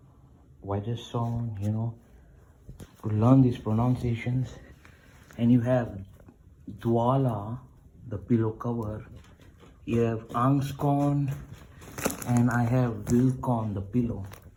Watson, to learn these pronunciations. And you have Dwala, the pillow cover. You have Angskon, and I have Wilcon, the pillow.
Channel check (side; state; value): both; identical; correlation 1.00